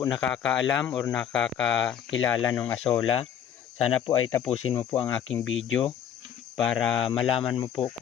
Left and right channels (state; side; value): quieter; right; 9.1 dB